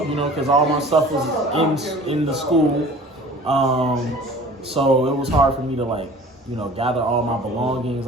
because all my stuff was in the school, so it was hard for me to gather all my belongings.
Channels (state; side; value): normal; both; correlation 0.45